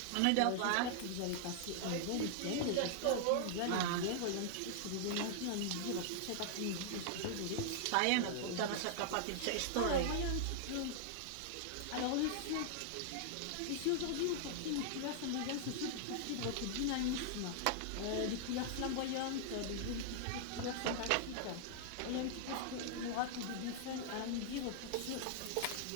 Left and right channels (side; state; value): both; different; correlation -0.01